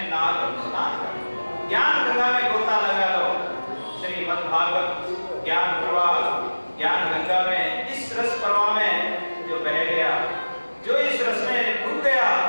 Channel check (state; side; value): inverted; both; correlation -1.00